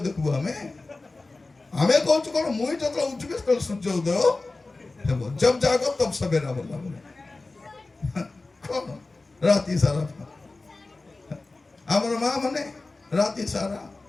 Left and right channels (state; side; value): quieter; right; 3.4 dB